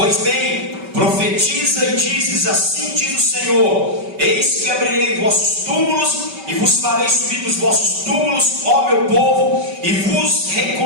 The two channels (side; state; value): left; late; 5.2 ms